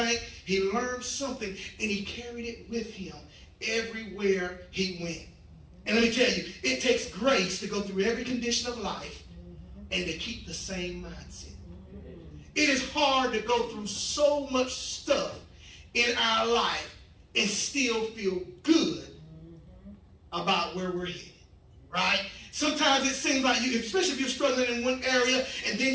he learned something and he carried it with him everywhere he went. And let me tell you, it takes grace to go through every condition of life and to keep the same mindset. It is hard to go through so much stuff in our life and still feel good about where we're headed, right? Sometimes it seems like you, especially if you're struggling in one area and then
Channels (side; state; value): both; identical; correlation 1.00